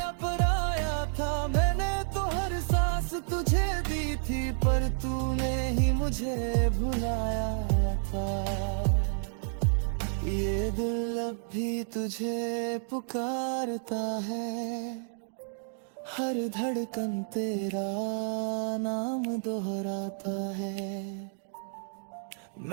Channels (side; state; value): left; silent; digital silence